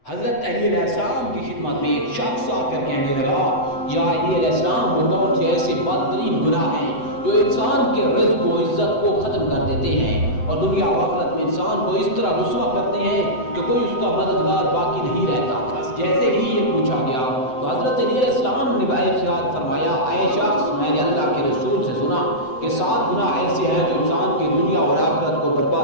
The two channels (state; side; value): late; right; 7.9 ms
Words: حضرت علی علیہ السلام کی خدمت میں ایک شخص آ کر کہنے لگا، یا علی علیہ السلام، وہ کون سے ایسے بدترین گناہ ہیں جو انسان کے رزق و عزت کو ختم کر دیتے ہیں اور دنیا و آخرت میں انسان کو اس طرح رسوا کرتے ہیں کہ کوئی اس کا مددگار باقی نہیں رہتا۔ بس جیسے ہی یہ پوچھا گیا تو حضرت علی علیہ السلام نے ارشاد فرمایا، اے شخص، میں نے اللہ کے رسول سے سنا کہ 7 گناہ ایسے ہیں جو انسان کی دنیا اور آخرت کو